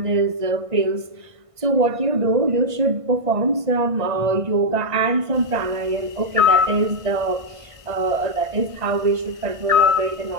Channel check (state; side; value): late; left; 1.5 ms